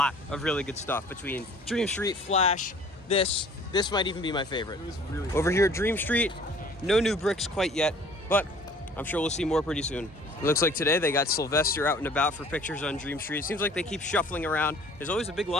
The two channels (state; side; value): normal; both; correlation 0.51